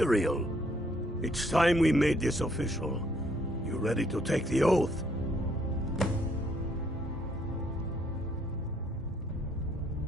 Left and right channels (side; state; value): both; normal; correlation 0.67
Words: It's time we made this official. You ready to take the oath?